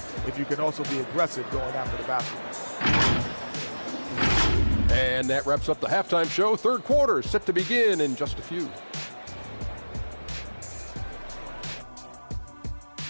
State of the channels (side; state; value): both; inverted; correlation -1.00